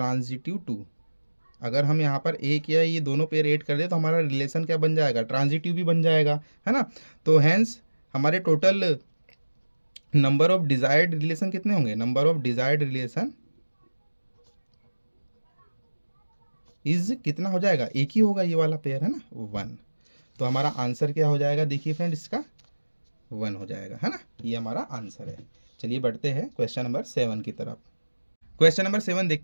too. अगर हम यहाँ पर एक या ये दोनों पेयर ऐड कर दे तो हमारा रिलेशन क्या बन जाएगा, ट्रांजिटिव भी बन जाएगा, है ना। तो हैंस हमारे total number of desired relation कितने होंगे, number of desired relation is कितना हो जाएगा, एक ही होगा ये वाला पेयर, है ना, 1। तो हमारा आंसर क्या हो जाएगा, देखिए फ्रेंड इसका 1 हो जाएगा, है ना, ये हमारा आंसर है। चलिए बढ़ते हैं क्वेश्चन नंबर 7 की तरफ। क्वेश्चन नंबर 7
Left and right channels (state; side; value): inverted; both; correlation -1.00